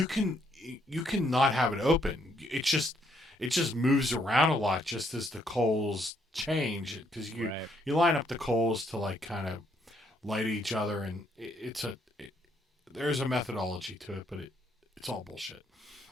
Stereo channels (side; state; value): both; normal; correlation 0.71